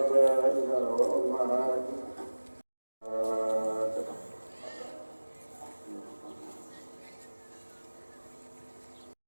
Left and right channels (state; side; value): inverted; both; correlation -1.00